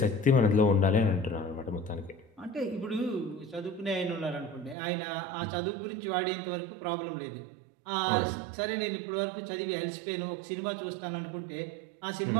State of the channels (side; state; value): left; drops out; at 4.8 s